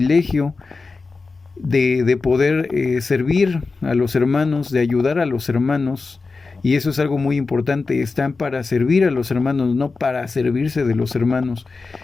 de poder servir a los hermanos, de ayudar a los hermanos. Y eso es algo muy importante, están para servir a los hermanos, no para servirse de los hermanos.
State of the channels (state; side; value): quieter; right; 4.1 dB